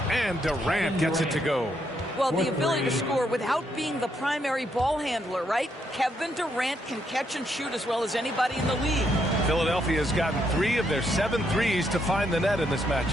And Durant gets it to go. Well, the ability to score without being the primary ball handler, right? Kevin Durant can catch and shoot as well as anybody in the league. Philadelphia has gotten 3 of their 7 threes to find the net in this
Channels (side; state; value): both; normal; correlation 0.76